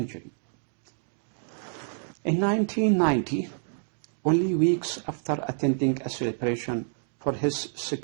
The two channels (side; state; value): left; silent; digital silence